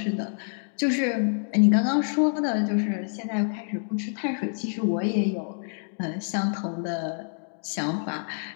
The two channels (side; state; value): right; silent; digital silence